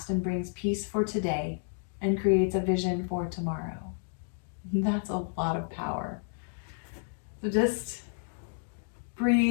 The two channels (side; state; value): right; silent; digital silence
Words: and brings peace for today and creates a vision for tomorrow. That's a lot of power. So just